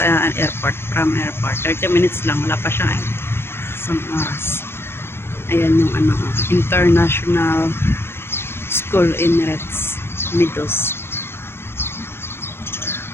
airport, from airport. 30 minutes lang, wala pa siya isang oras. Ayan yung International School Emirates Meadows.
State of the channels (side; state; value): right; late; 0.11 ms